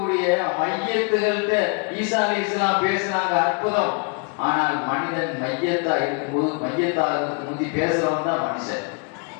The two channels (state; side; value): quieter; right; 34.0 dB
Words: மையத்துகள்கிட்ட ஈசா அலைஹிஸ்ஸலாம் பேசினாங்க, அற்புதம். ஆனால் மனிதன் மையத்தா இருக்கும்போது, மையத்தாக முந்தி பேசுறவன் தான் மனுஷன்.